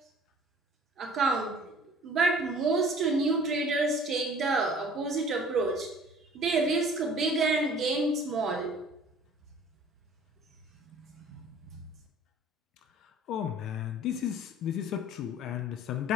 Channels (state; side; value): normal; both; correlation 0.50